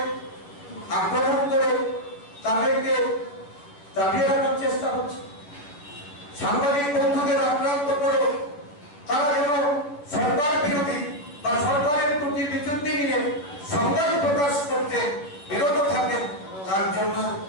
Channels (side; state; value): right; late; 10 ms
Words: আক্রমণ করে তাদেরকে দাবিয়ে রাখার চেষ্টা হচ্ছে। সাংবাদিক বন্ধুদের আক্রান্ত করে তারা যেন সরকার বিরোধী বা সরকারের প্রতি বিচ্যুতি নিয়ে সংবাদ প্রকাশ করতে বিরত থাকেন, তার জন্য